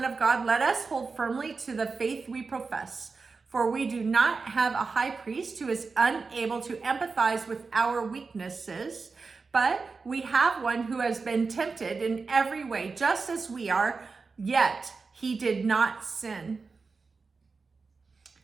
of God, let us hold firmly to the faith we profess. For we do not have a high priest who is unable to empathize with our weaknesses, but we have one who has been tempted in every way, just as we are, yet he did not sin.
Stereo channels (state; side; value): quieter; left; 4.5 dB